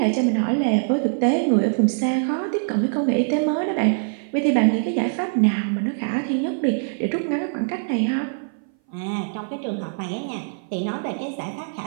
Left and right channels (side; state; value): left; silent; 59 dB below the other